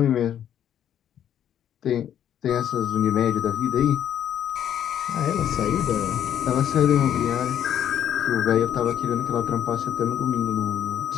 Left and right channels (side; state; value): right; quieter; 10.1 dB